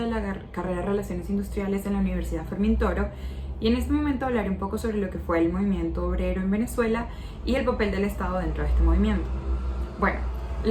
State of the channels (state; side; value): identical; both; correlation 1.00